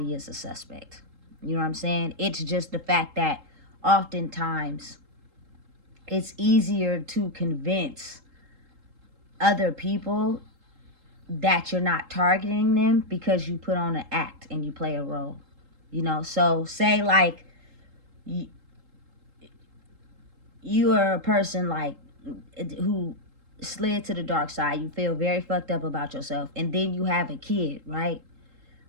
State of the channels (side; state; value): left; late; 3.8 ms